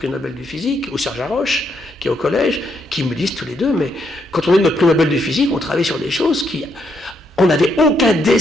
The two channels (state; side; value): normal; both; correlation 0.76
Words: Nobel de physique, ou Serge Haroche, qui est au collège, qui me disent tous les deux, mais quand on est notre prix Nobel de physique, on travaille sur des choses qui... On n'avait aucun